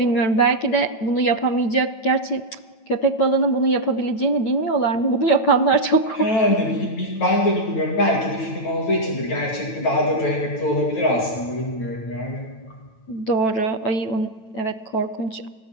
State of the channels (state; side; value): late; right; 9.1 ms